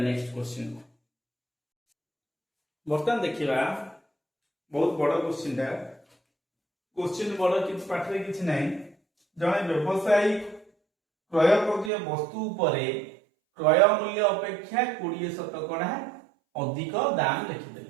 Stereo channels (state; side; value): drops out; left; at 11.9 s